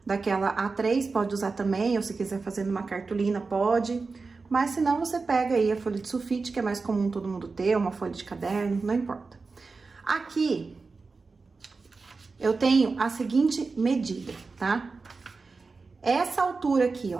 daquela A3, pode usar também, ou se quiser fazer numa cartolina, pode. Mas se não, você pega aí a folha de sulfite, que é mais comum todo mundo ter, uma folha de caderno, não importa. Aqui, eu tenho a seguinte medida, tá? Essa altura aqui,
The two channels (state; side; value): quieter; left; 4.2 dB